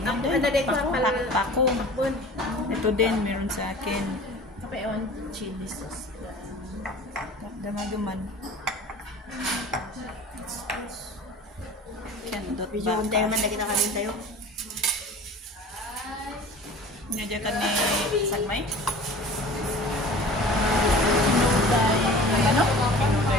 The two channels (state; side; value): normal; both; correlation 0.41